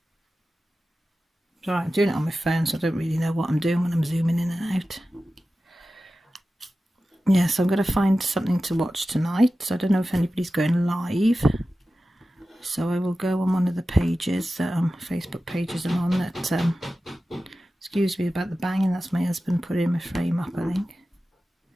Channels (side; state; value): both; normal; correlation 0.94